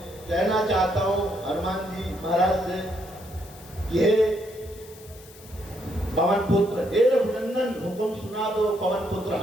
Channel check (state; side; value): noise; left; hiss, 21 dB below the sound